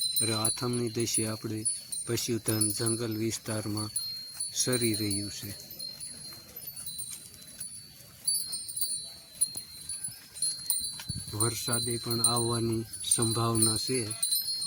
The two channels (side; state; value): both; identical; correlation 1.00